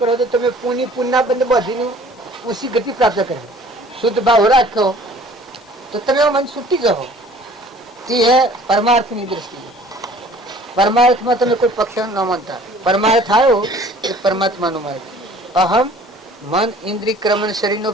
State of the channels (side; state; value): both; normal; correlation 0.51